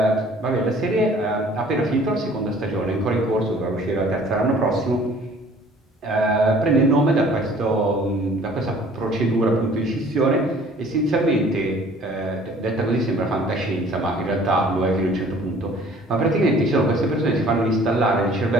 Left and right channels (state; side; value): normal; both; correlation 0.53